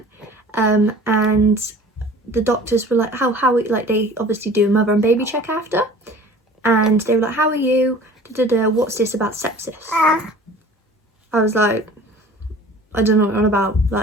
And the doctors were like, how like they obviously do a mother and baby check after, and they were like, how are you? What's this about sepsis? I was like, I don't know what you're on about.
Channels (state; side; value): normal; both; correlation 0.45